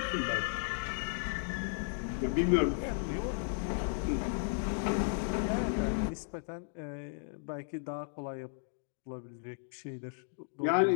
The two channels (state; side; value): silent; right; digital silence